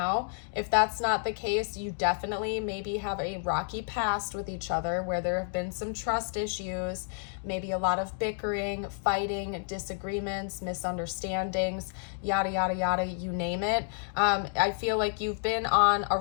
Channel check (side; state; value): right; silent; 58 dB below the other